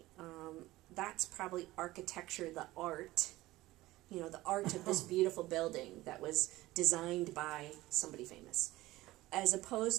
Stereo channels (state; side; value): quieter; left; 17.8 dB